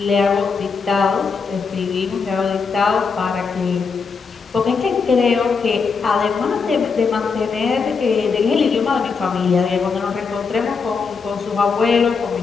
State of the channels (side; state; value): right; quieter; 5.2 dB